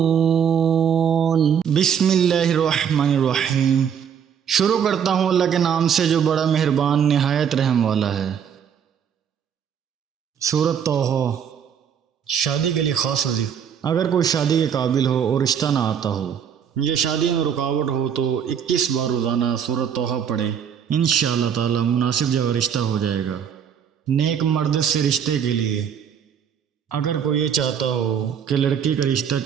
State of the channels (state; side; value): quieter; left; 7.9 dB